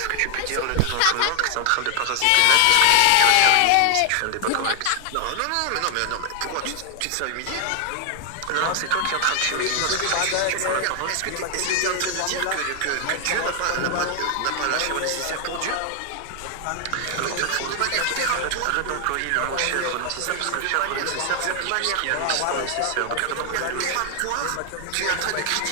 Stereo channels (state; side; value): different; both; correlation 0.00